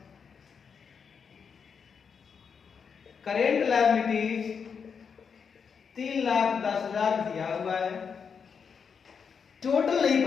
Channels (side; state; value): right; quieter; 6.3 dB